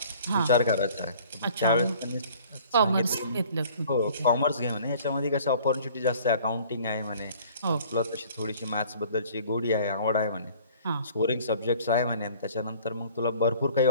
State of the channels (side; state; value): both; inverted; correlation -0.52